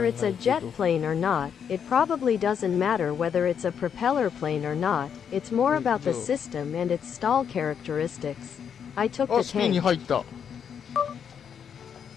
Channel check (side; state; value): right; quieter; 7.7 dB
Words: い it's a け jet ど。 plane or not, it probably doesn't matter whether it's a propeller plane or not. It's more about the system and its stall characteristics. I took あ、 the スピンに tank. 入った。